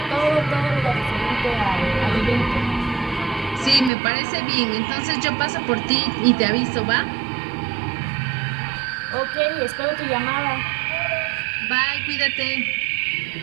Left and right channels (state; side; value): drops out; left; at 3.9 s